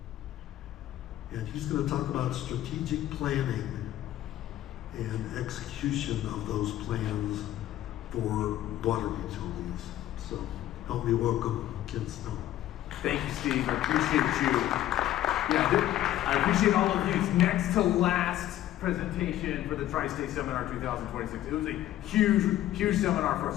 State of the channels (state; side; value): quieter; right; 13.4 dB